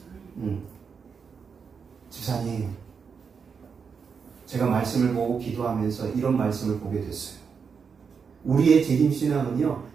집사님, 제가 말씀을 보고 기도하면서 이런 말씀을 보게 됐어요. 우리의 재림신앙은요,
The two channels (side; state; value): left; quieter; 6.0 dB